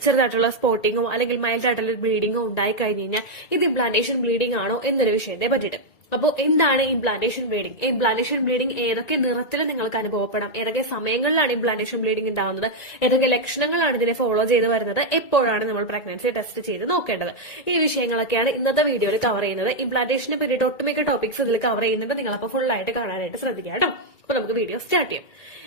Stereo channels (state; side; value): late; right; 1.9 ms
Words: ചെറുതായിട്ടുള്ള സ്പോട്ടിങ്ങോ അല്ലെങ്കിൽ മൈൽഡ് ആയിട്ടുള്ള ബ്ലീഡിങ്ങോ ഉണ്ടായി കഴിഞ്ഞ് കഴിഞ്ഞാൽ ഇത് ഇംപ്ലാന്റേഷൻ ബ്ലീഡിംഗ് ആണോ എന്നൊരു വിഷയത്തെ പറ്റിയിട്ട്. അപ്പോൾ എന്താണ് ഇംപ്ലാന്റേഷൻ ബ്ലീഡിംഗ്? ഇംപ്ലാന്റേഷൻ ബ്ലീഡിംഗ് ഏതൊക്കെ നിറത്തിൽ നിങ്ങൾക്ക് അനുഭവപ്പെടാം, ഏതൊക്കെ സമയങ്ങളിലാണ് ഇംപ്ലാന്റേഷൻ ബ്ലീഡിംഗ് ഉണ്ടാവുന്നത്, ഏതൊക്കെ ലക്ഷണങ്ങളാണ് ഇതിനെ ഫോളോ ചെയ്ത് വരുന്നത്, എപ്പോഴാണ് നമ്മൾ പ്രഗ്നൻസി ടെസ്റ്റ് ചെയ്ത് നോക്കേണ്ടത്, ഈ വിഷയങ്ങളൊക്കെയാണ് ഇന്നത്തെ വീഡിയോയിൽ കവർ ചെയ്യുന്നത്. ഇംപ്ലാന്റേഷനെ പറ്റിയിട്ട് ഒട്ടുമിക്ക ടോപ്പിക്സ് ഇതിൽ കവർ ചെയ്യുന്നുണ്ട്. നിങ്ങളപ്പോൾ ഫുൾ ആയിട്ട് കാണാനായിട്ട് ശ്രദ്ധിക്കുക കേട്ടോ. അപ്പോൾ നമുക്ക് വീഡിയോ സ്റ്റാർട്ട് ചെയ്യാം.